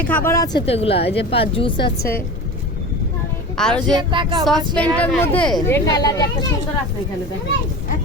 খাবার আছে তো এগুলা, এই যে জুস আছে আর ওই যে সসপেনটার মধ্যে এই কালারটা একটা সুন্দর আছে এখানে দেখেন।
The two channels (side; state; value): both; normal; correlation 0.31